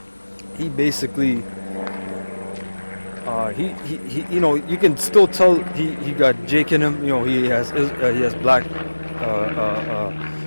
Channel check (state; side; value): inverted; both; correlation -1.00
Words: He basically he you know, you can still tell he got Jake in him. You know, he has black